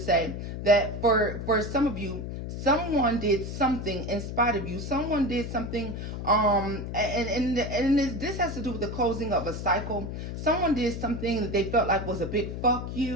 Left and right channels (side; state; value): left; noise; hum, 6 dB below the sound